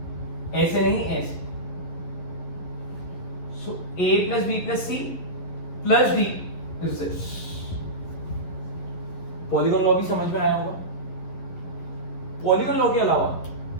ऐसे नहीं ऐसे। So A plus B plus C plus D is this. Polygon law भी समझ में आया होगा। पॉलीगॉन लॉ के अलावा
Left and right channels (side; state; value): right; late; 11 ms